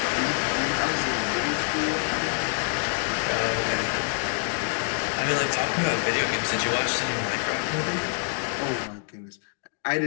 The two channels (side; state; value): right; silent; 61 dB below the other